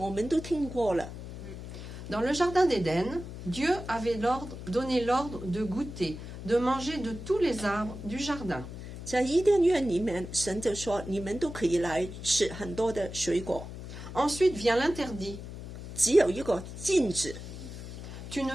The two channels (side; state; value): left; noise; hum, 11 dB below the sound